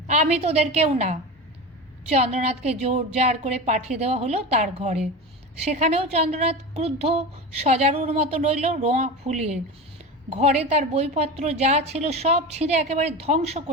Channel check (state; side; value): normal; both; correlation 0.26